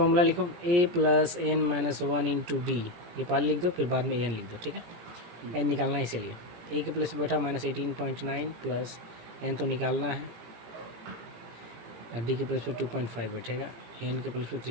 लिखो A plus N minus one into D, ये पहले लिख दो फिर बाद में ए एन लिख दो, ठीक है। एन निकालना है इसीलिए, ए के प्लस बैठा -18.9 प्लस एन तो निकालना है, डी के प्लस पे 2.5 बैठेगा, एन के प्लस पे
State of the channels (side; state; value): left; late; 17 ms